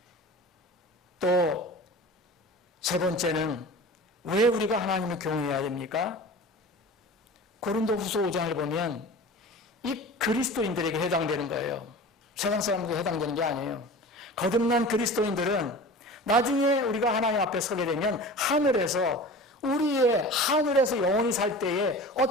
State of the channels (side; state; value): both; normal; correlation 0.36